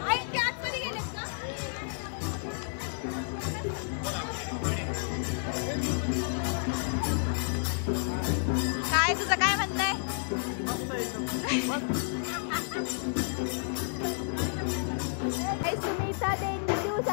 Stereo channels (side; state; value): right; silent; digital silence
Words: काय तुझं काय म्हणणं आहे? सुनीता देवी देऊ